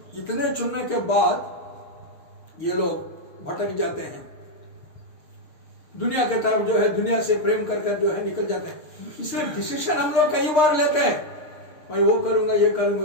इतने चुनने के बाद ये लोग भटक जाते हैं, दुनिया के तरफ जो है, दुनिया से प्रेम कर जो है निकल जाते हैं। इसलिए डिसीजन हम लोग कई बार लेते हैं, मैं वो करूंगा ये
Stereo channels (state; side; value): late; right; 6.5 ms